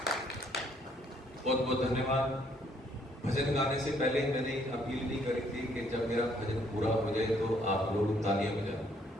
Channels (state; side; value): normal; both; correlation 0.66